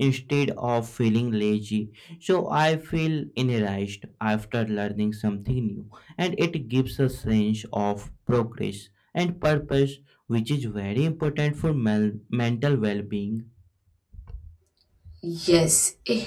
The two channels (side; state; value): both; identical; correlation 1.00